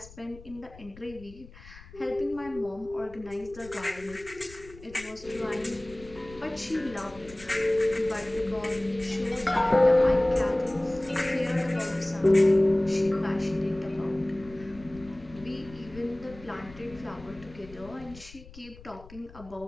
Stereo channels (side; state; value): left; noise; rumble, 19 dB below the sound